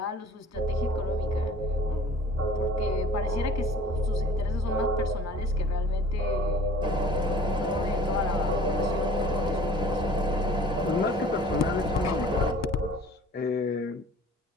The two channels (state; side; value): normal; both; correlation 0.48